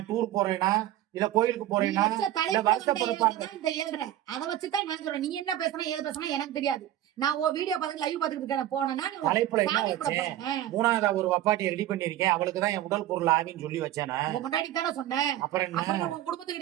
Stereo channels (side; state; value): left; quieter; 13.0 dB